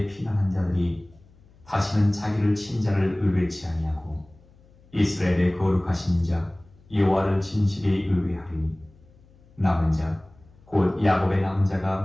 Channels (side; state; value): left; noise; hum, 28 dB below the sound